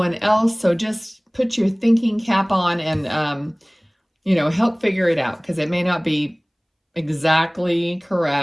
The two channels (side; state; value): both; identical; correlation 1.00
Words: else. So just put your thinking cap on and, help figure it out, because it may not be exactly